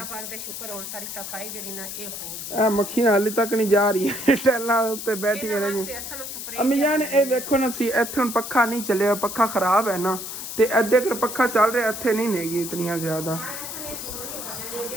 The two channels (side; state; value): left; noise; hiss, 8 dB below the sound